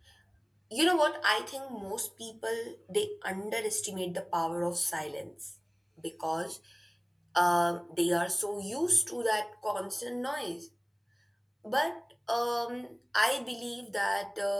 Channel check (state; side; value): identical; both; correlation 1.00